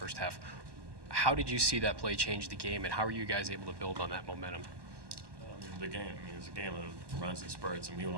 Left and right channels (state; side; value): late; left; 1.2 ms